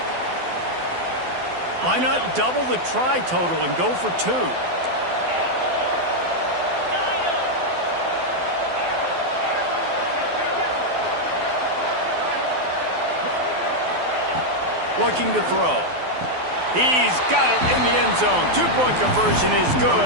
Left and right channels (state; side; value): late; left; 12 ms